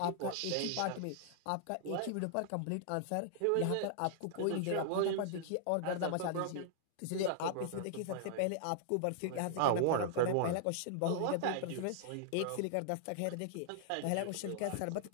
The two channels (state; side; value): different; both; correlation -0.01